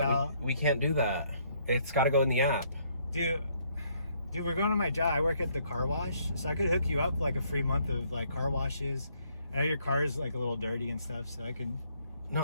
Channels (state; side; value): inverted; both; correlation -0.68